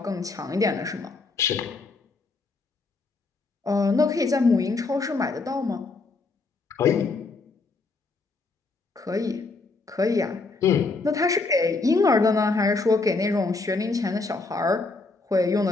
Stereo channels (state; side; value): quieter; right; 3.8 dB